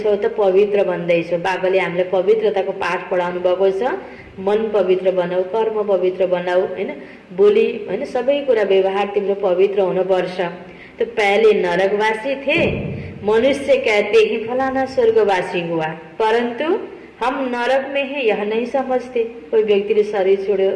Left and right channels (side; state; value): both; identical; correlation 1.00